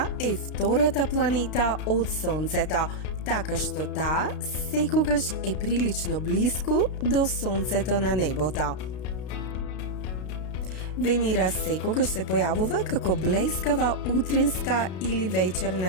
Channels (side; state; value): right; late; 32 ms